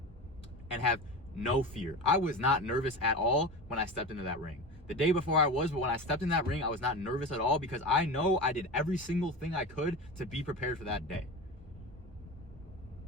and have no fear. I was not nervous at all when I stepped into that ring. The day before I was, but when I stepped in that ring, I was not nervous at all because I know I did every single thing I could to be prepared for that day.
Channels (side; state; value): both; normal; correlation 0.27